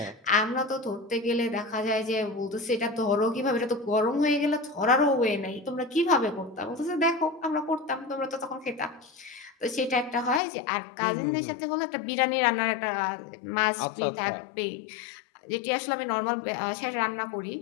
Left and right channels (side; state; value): right; drops out; at 10.4 s